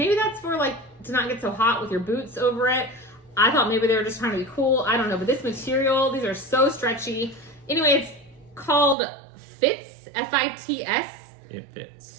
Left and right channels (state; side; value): drops out; left; at 9.0 s